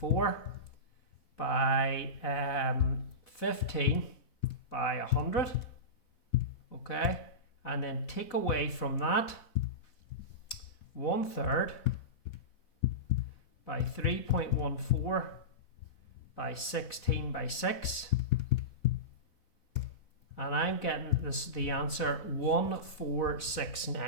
by 15 by 100. Okay, and then take away from that 1/3 by 3.14 by 16 by 6. And I'm getting the answer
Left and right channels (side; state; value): right; late; 4.1 ms